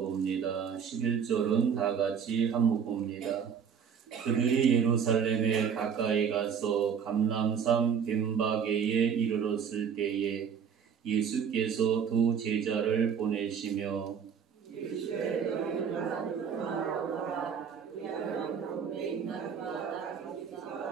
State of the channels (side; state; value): left; quieter; 7.2 dB